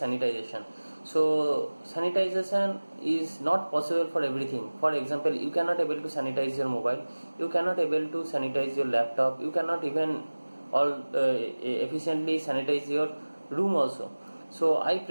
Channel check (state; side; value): inverted; both; correlation -1.00